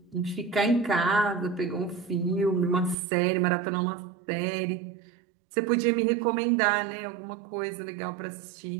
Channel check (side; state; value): left; drops out; at 3.0 s